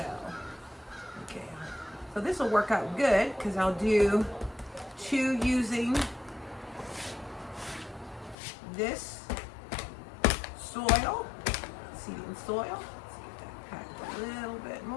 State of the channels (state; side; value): drops out; right; at 8.3 s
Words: okay, so this will work out good because I'll do 2 using this soil, seeding soil. Let's get that packed a little bit